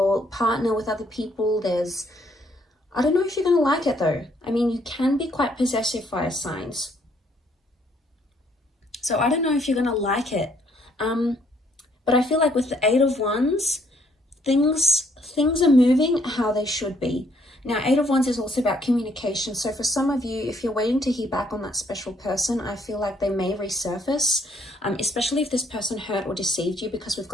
partner with other people. I don't know if you're going to like it though. I mean, you can be quite possessive, fire signs. So I don't know if you're going to like it. But I feel like with the Eight of Wands, things are moving how they should be. Now, Eight of Wands is also about communication. So for some of you, if you're waiting to hear back on that special person, I feel like they may resurface, especially if this person hurt or deceived you, because we've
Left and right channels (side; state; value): both; normal; correlation 0.68